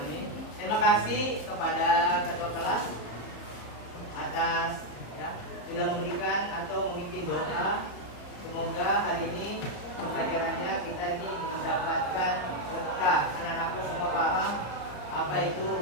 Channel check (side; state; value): right; late; 34 ms